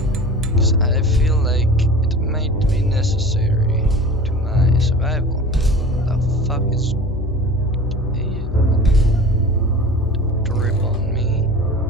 Because I feel like it might be necessary to my survival. What the fuck is... Ew. Drip on me.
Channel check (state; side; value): noise; left; hum, 7 dB below the sound